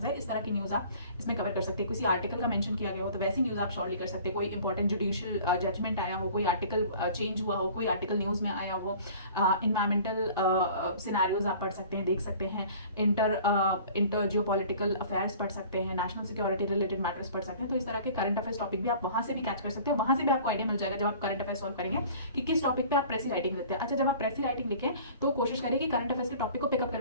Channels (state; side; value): inverted; both; correlation -0.47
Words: इस तरह की न्यूज़ आप इसमें कवर कर सकते हैं। किसी आर्टिकल का मेंशन किया गया हो तो वैसी न्यूज़ आप शॉर्टली कर सकते हैं। कोई इंपॉर्टेंट जुडिशियल जजमेंट आया हो, कोई आर्टिकल चेंज हुआ हो, कोई आर्टिकल न्यूज़ में आया हो, इन्वायरमेंटल सिनेरियोज आप पढ़ सकते हैं, देख सकते हैं, इंटर जियो पॉलिटिकल अफेयर्स पढ़ सकते हैं, नेशनल सिक्योरिटी रिलेटेड मैटर्स पढ़ सकते हैं। तो इस तरह के करंट अफेयर्स टॉपिक भी आप वहां से भी कैच कर सकते हो। वहां से भी आपको आइडिया मिल जाएगा जब आप करंट अफेयर्स सॉल्व करेंगे कि किस टॉपिक पे आप प्रेसी राइटिंग लिखते हैं। अच्छा, जब आप प्रेसी राइटिंग लिखें तो कोशिश करिए कि करंट अफेयर्स के टॉपिक को पिकअप